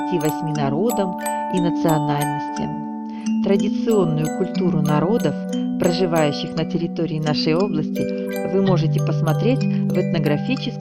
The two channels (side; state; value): both; identical; correlation 1.00